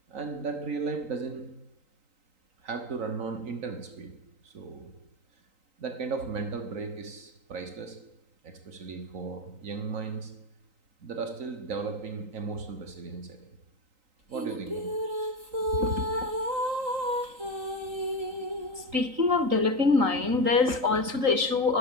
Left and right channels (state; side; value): late; left; 3.9 ms